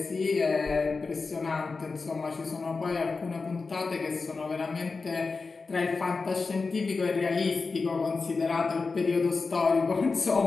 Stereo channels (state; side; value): quieter; right; 4.3 dB